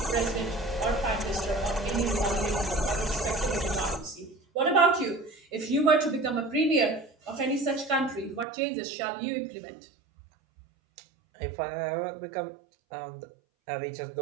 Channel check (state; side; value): drops out; left; at 8.5 s